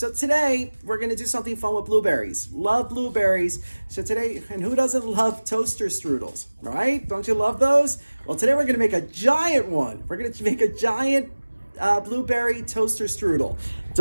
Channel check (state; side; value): inverted; both; correlation -1.00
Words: today we're going to do something fun with blueberries. Love blueberries. So today, and who doesn't love toaster strudels, right? Don't you love those? Well, today we're going to make a giant one. We're going to make a giant blueberry toaster strudel.